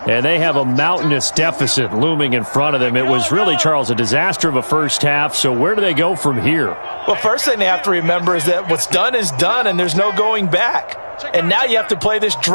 And they have a mountainous deficit looming in front of them. It was really, Charles, a disaster of a first half. So where do they go from here? Well, first thing they have to remember is that what's done is done, and there's no going back. And now you have to play this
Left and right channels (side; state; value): both; inverted; correlation -1.00